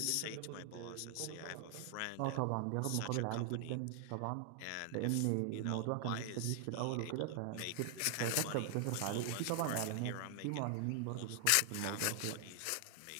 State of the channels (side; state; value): both; different; correlation 0.00